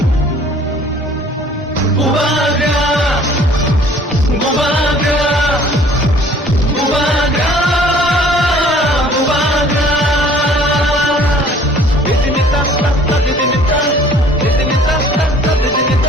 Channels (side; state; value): both; normal; correlation 0.54